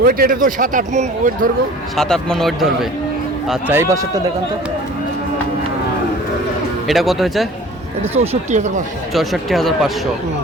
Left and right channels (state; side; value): normal; both; correlation 0.45